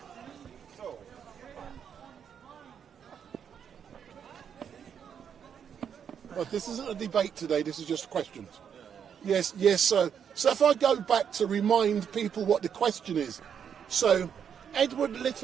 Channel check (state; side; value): quieter; left; 7.9 dB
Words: But this isn't a debate today. This is just questions. Yes. So if I go back to remind people what the question is. So Edward